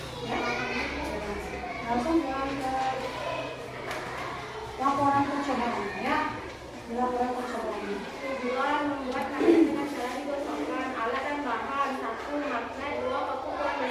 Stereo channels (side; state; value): both; identical; correlation 1.00